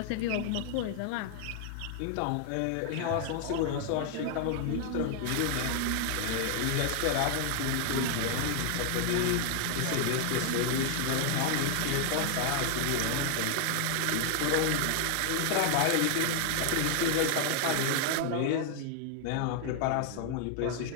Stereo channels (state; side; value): different; both; correlation 0.00